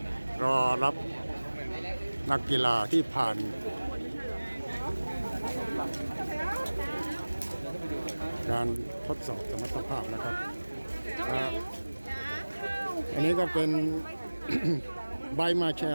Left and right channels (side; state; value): both; inverted; correlation -1.00